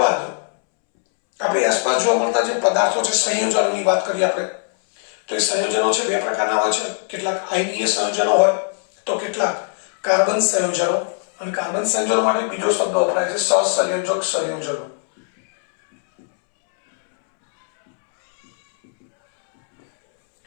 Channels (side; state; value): right; silent; 66 dB below the other